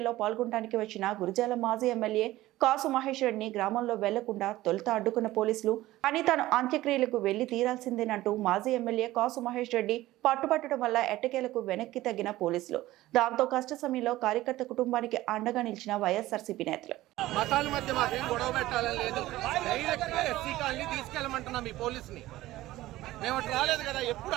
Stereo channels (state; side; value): quieter; left; 16.5 dB